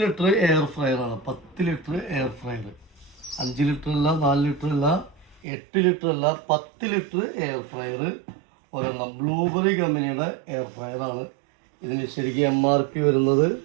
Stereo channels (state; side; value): drops out; left; at 5.5 s